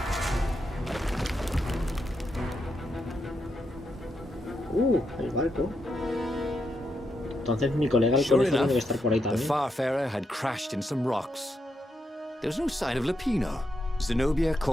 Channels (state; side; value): normal; both; correlation 0.82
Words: El barco. Entonces mi colega el Sure conejo enough, debe estar por ahí the también. Farfarer had crashed in some rocks. There was no sign of Lapino. Zenobia